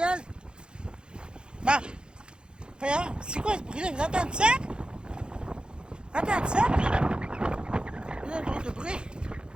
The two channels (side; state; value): left; late; 0.050 ms